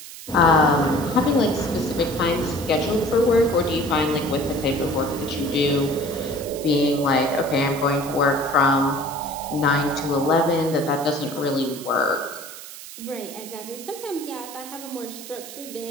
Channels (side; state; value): right; noise; hiss, 14 dB below the sound